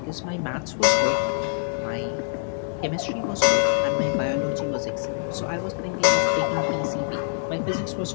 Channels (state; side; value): silent; right; 62 dB below the other